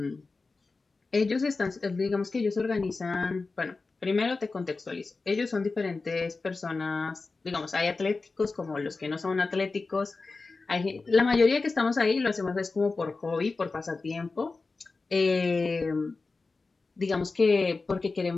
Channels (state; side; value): quieter; right; 3.9 dB